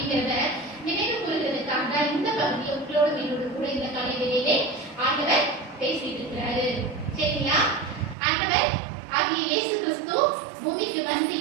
நினைவு கூறுகிறதுக்காக தான் இந்த பகுதியை உங்களோடு என்னோடு கூட இந்த காலையிலே ஆண்டவர் பேசிட்டு இருக்கிறாரு. சரிங்களா? ஆண்டவர் ஆகிய இயேசு கிறிஸ்து பூமிக்கு வந்து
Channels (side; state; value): left; drops out; at 8.2 s